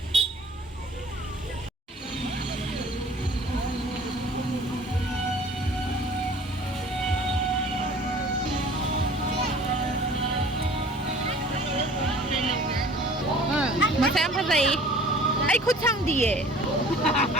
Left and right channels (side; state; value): both; normal; correlation 0.48